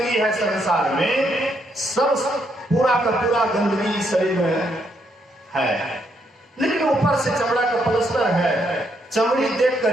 है संसार में, सब पूरा का पूरा गंदगी इस शरीर में है, लेकिन ऊपर से चमड़ा का पलस्तर है। चमड़ी देख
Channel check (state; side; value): normal; both; correlation 0.75